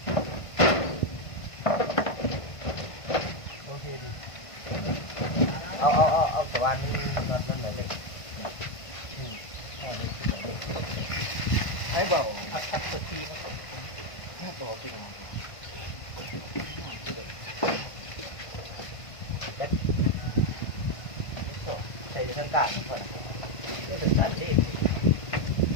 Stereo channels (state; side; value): late; right; 1.5 ms